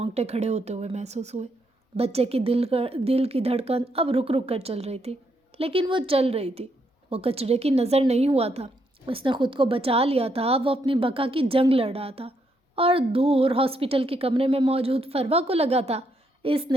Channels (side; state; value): both; normal; correlation 0.77